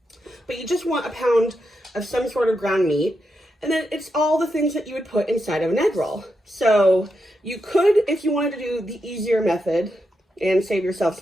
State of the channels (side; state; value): both; normal; correlation 0.85